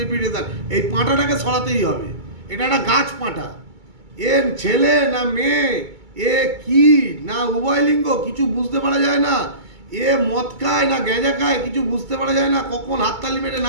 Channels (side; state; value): left; late; 2.2 ms